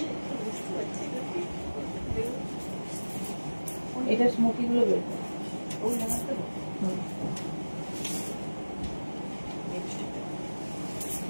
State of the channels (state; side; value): inverted; both; correlation -1.00